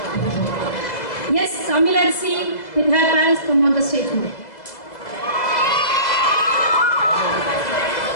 Yes, Samilarsi with her parents come on the stage.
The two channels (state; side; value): late; right; 2.0 ms